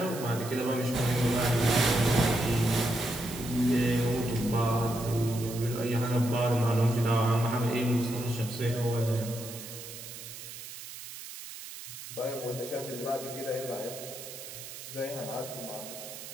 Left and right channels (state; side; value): noise; right; hiss, 12 dB below the sound